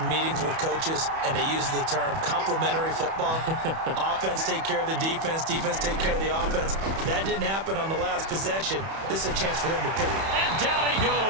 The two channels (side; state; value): left; late; 31 ms